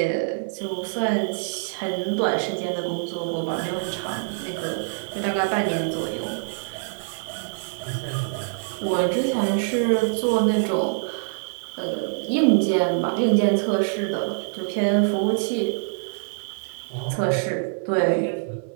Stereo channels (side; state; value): left; silent; digital silence